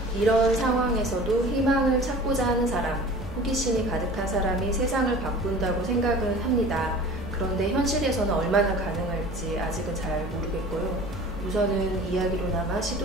이런 상황에서도 희망을 찾고자 하는 사람, 호기심이 가득한 사람이 세상을 바꾼다고 생각은 합니다. 그런데 현실에서는 얼마나 가능할지 아직은 잘 모르겠고요. 우선은 이야기로나마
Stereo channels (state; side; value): normal; both; correlation 0.42